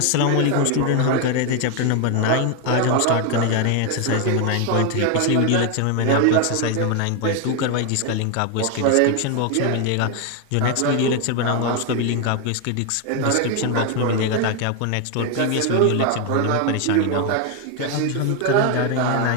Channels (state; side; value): different; both; correlation 0.01